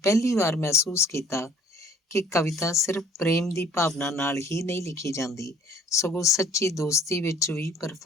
ਪਹਿਲੀ ਵਾਰ ਮਹਿਸੂਸ ਕੀਤਾ ਕਿ ਕਵਿਤਾ ਸਿਰਫ ਪ੍ਰੇਮ ਦੀ ਭਾਵਨਾ ਨਾਲ ਹੀ ਨਹੀਂ ਲਿਖੀ ਜਾਂਦੀ, ਸਗੋਂ ਸੱਚੀ ਦੋਸਤੀ ਵਿੱਚ ਵੀ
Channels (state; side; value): normal; both; correlation 0.56